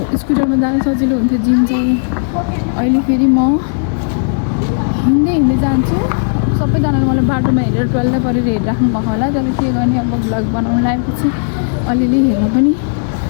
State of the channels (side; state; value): right; silent; digital silence